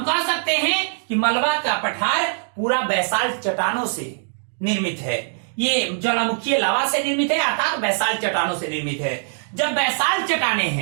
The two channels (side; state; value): left; silent; digital silence